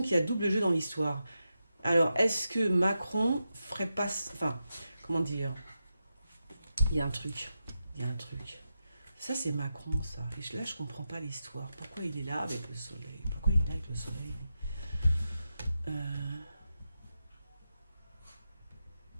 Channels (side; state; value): both; inverted; correlation -0.88